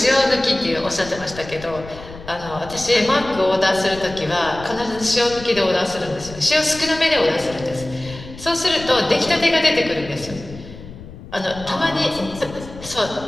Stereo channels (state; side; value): noise; left; rumble, 15 dB below the sound